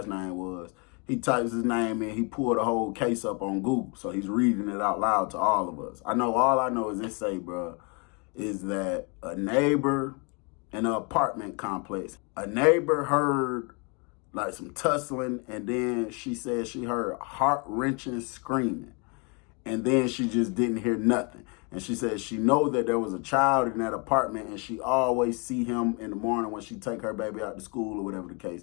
name was. He types his name in. He pulled the whole case up on Google, so he's reading it out loud to all of us. All I know is this say, bro, is that a neighbor in an apartment complex, a neighbor heard like some tussling, and then she said she heard heart-wrenching screaming, and then she just didn't hear nothing. And she said she know that there was a child in that apartment, and she always see him in the morning when she take her baby out to school or whatever the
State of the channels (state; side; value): quieter; right; 33.0 dB